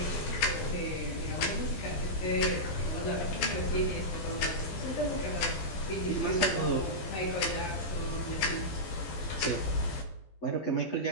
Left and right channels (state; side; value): late; right; 12 ms